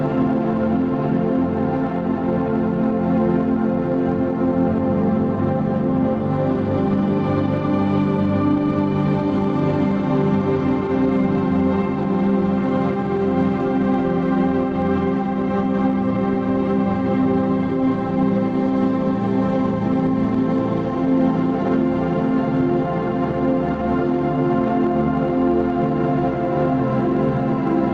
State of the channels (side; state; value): both; identical; correlation 1.00